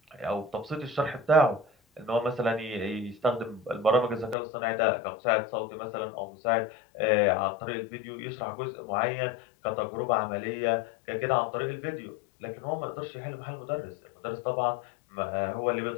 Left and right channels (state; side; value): drops out; right; at 4.4 s